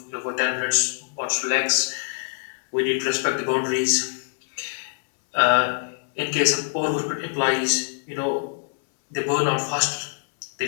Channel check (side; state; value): right; silent; 62 dB below the other